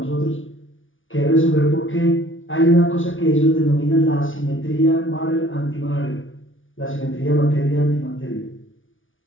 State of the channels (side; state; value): right; late; 0.57 ms